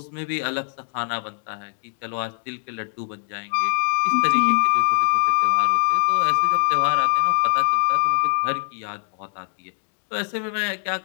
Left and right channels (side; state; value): right; silent; 59 dB below the other